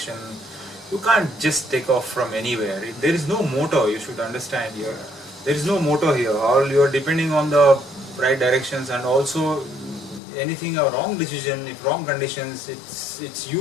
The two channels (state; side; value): drops out; right; at 10.2 s